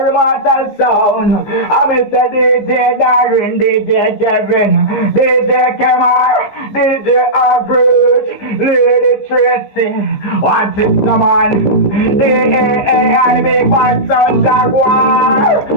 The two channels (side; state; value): right; late; 15 ms